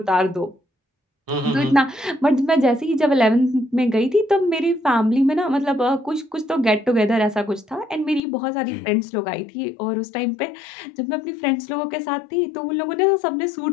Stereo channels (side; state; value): right; drops out; at 8.2 s